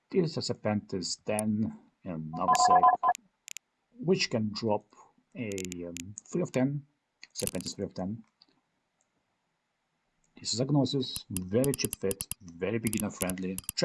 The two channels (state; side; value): identical; both; correlation 1.00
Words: is a Serpentis Den and nullsec, which can drop a 3 of 10, Serpentis 3 of 10. This is a Gnosis, very cheap fit, very beginner friendly.